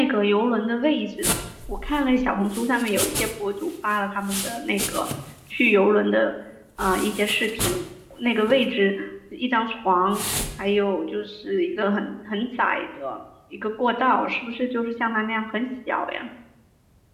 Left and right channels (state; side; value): identical; both; correlation 1.00